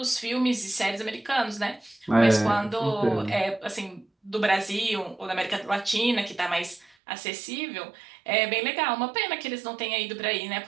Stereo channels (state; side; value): drops out; left; at 7.0 s